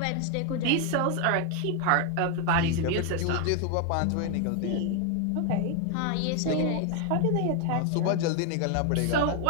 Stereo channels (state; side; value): different; both; correlation 0.01